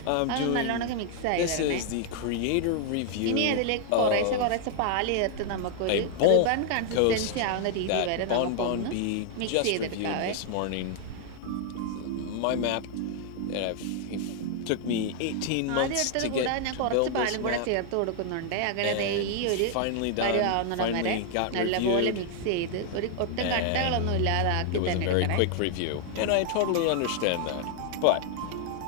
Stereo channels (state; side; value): different; both; correlation 0.00